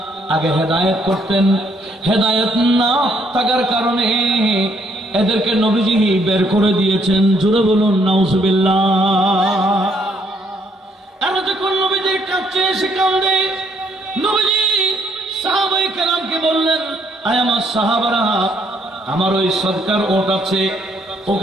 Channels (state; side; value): normal; both; correlation 0.69